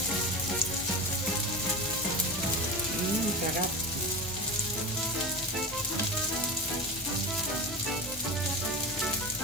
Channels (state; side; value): normal; both; correlation 0.24